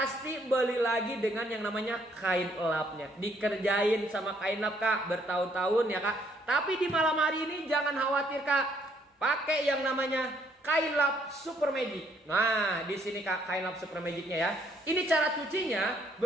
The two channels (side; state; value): both; normal; correlation 0.67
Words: beli lagi dengan yang namanya kain lapnya. Dikerjain sama kain lap kak, bertahun-tahun ya kak. Tapi di malam hari ini jangan khawatir kak. Pakai yang namanya kain lap super magic. Nah, di sini kak kain lap super magicnya ya. Ini cara cucinya,